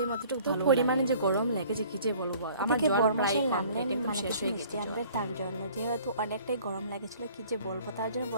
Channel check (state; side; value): inverted; both; correlation -0.52